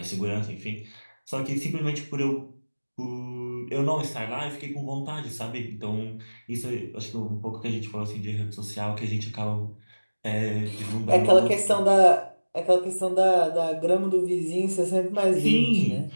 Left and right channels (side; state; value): both; inverted; correlation -1.00